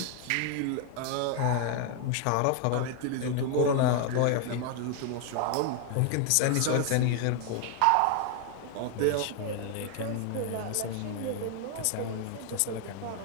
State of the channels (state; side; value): different; both; correlation 0.00